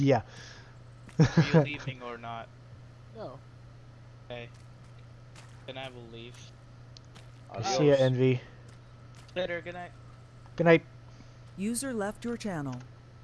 you. yeah. Are you leaving or not? No. Okay. Then I will leave. See ya, Envy. Later, good night. Good night. User left your channel.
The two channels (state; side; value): identical; both; correlation 1.00